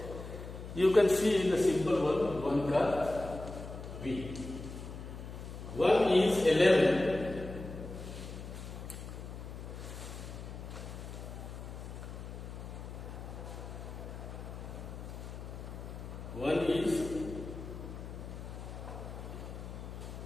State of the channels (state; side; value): noise; left; hum, 10 dB below the sound